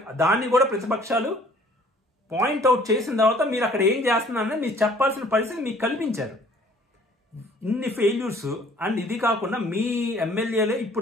దాన్ని కూడా ప్రతిపక్షాలు పాయింట్అవుట్ చేసిన తర్వాత మీరు అక్కడ ఏం చేస్తున్నారని మీరు చెప్పాల్సిన పరిస్థితి మీకు కల్పించారు. ఇన్ని ఫెయిల్యూర్స్. అండ్ ఇది కాకుండా మీ ఎమ్మెల్యేలే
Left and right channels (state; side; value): normal; both; correlation 0.55